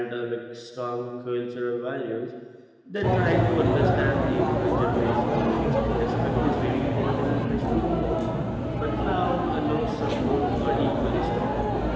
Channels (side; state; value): both; identical; correlation 1.00